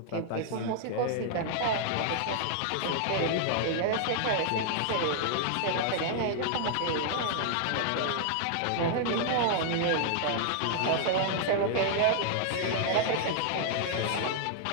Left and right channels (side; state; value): both; different; correlation -0.01